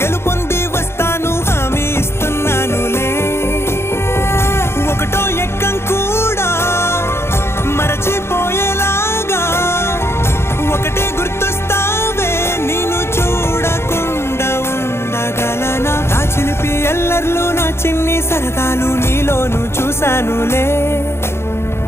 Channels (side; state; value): right; late; 0.12 ms